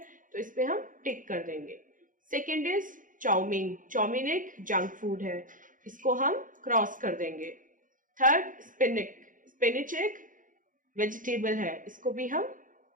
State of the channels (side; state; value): left; late; 0.39 ms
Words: तो इस पे हम टिक कर देंगे। सेकेंड इज चाउमीन, चाउमीन एक जंक फूड है, इसको हम क्रॉस कर देंगे। थर्ड स्पिनिच, स्पिनिच एक वेजिटेबल है, इसको भी हम